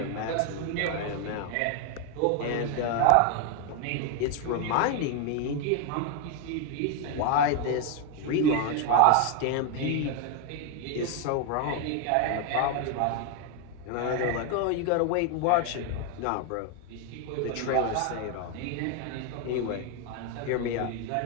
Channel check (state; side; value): different; both; correlation 0.01